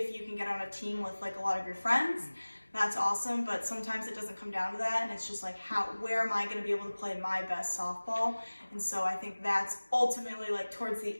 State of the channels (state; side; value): inverted; both; correlation -1.00